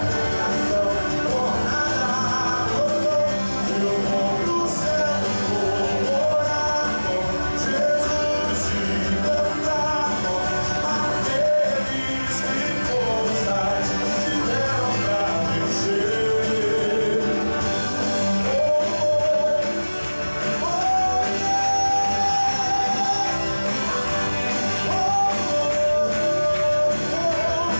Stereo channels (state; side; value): inverted; both; correlation -1.00